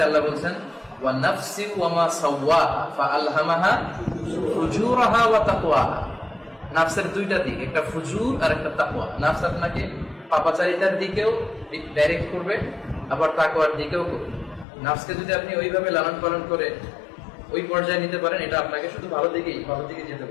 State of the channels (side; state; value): right; drops out; at 14.7 s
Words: আল্লাহ বলছেন ওয়া নাফসি ওয়া মা সাওয়াহা ফাআলহামাহা ফুজুরাহা ওয়া তাকওয়াহা। নাফসের দুইটা দিক, একটা ফুজুর আর একটা তাকওয়া। নাফস আপনাকে পাপাচারিতার দিকেও ডাইরেক্ট করবে, আবার তাকওয়ার দিকেও করবে। নাফসকে যদি আপনি ওইভাবে লালন পালন করে ওই পর্যায়ে নিতে পারেন, এটা আপনাকে শুধু ভালো দিকে যেতে